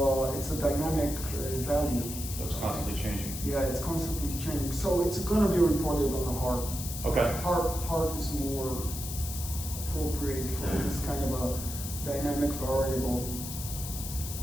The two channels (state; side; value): noise; left; hiss, 8 dB below the sound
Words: dynamic value. So it's constantly changing. Yeah, it's constantly changing. So it's going to be reported on the heart. Okay. Heart is more appropriate for this kind of a dynamic variable.